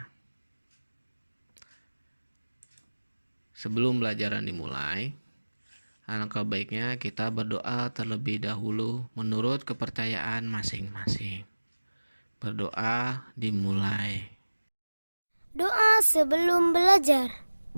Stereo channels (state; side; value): inverted; both; correlation -1.00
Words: Sebelum pelajaran dimulai, alangkah baiknya kita berdoa terlebih dahulu menurut kepercayaan masing-masing. Berdoa dimulai. Doa sebelum belajar.